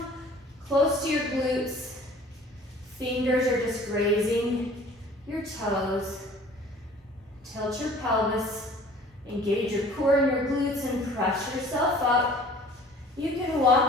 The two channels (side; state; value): both; normal; correlation 0.49